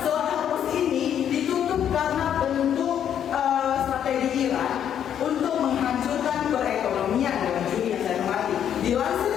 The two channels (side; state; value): right; quieter; 9.4 dB